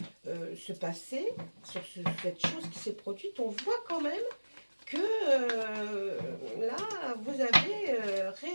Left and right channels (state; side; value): inverted; both; correlation -1.00